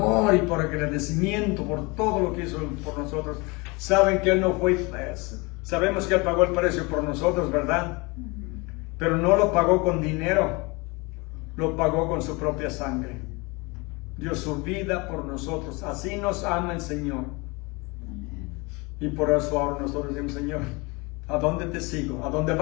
y por agradecimiento, por todo lo que hizo por nosotros. Saben que Él no fue, sabemos que Él pagó el precio por nosotros, ¿verdad? Pero no lo pagó con dinero, lo pagó con su propia sangre. Dio su vida por nosotros. Así nos ama el Señor. Y por eso ahora nosotros decimos, Señor, ¿a dónde te sigo? A donde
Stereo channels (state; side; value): quieter; right; 26.8 dB